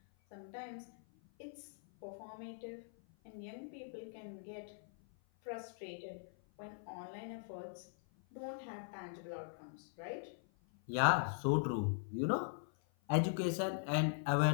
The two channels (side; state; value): right; silent; 50 dB below the other